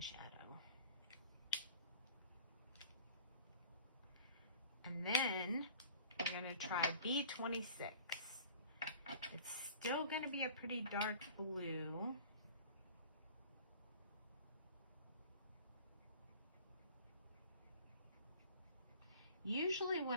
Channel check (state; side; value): inverted; both; correlation -0.47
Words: shadow. And then we're going to try B26. It's still going to be a pretty dark blue. Usually